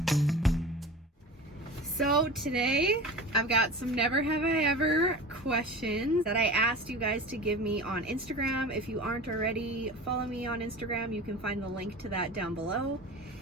So today I've got some Never Have I Ever questions that I asked you guys to give me on Instagram. If you aren't already, follow me on Instagram. You can find the link to that down below.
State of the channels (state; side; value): normal; both; correlation 0.34